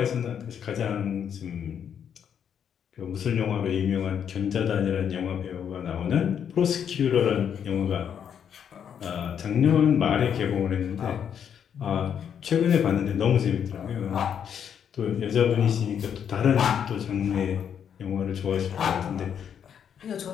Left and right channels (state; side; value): quieter; right; 8.3 dB